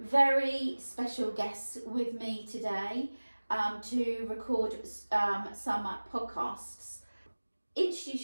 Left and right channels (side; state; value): both; inverted; correlation -1.00